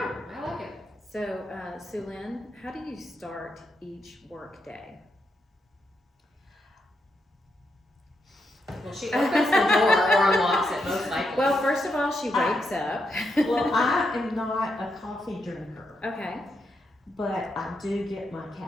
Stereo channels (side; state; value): both; normal; correlation 0.82